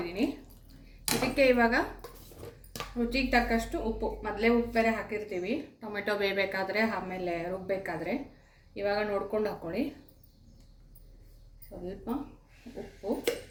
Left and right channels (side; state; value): both; identical; correlation 1.00